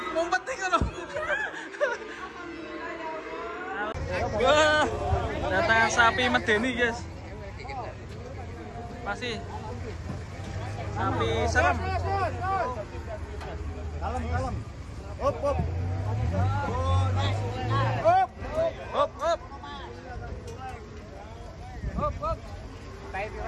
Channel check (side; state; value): both; identical; correlation 1.00